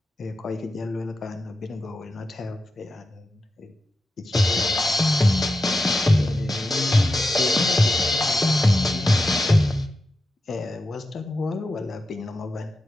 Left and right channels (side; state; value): both; normal; correlation 0.90